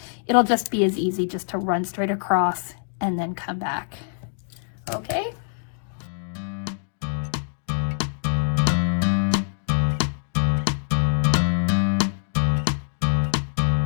it'll just be as easy just to run straight across and then come back. Okay?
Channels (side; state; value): right; silent; digital silence